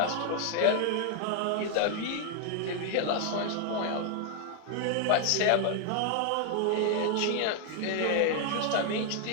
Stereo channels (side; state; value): both; different; correlation 0.00